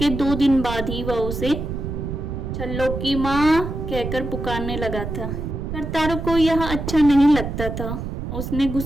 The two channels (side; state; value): right; noise; rumble, 5 dB below the sound